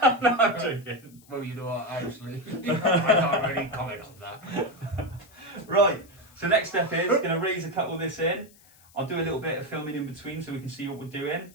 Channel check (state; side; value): noise; left; hiss, 26 dB below the sound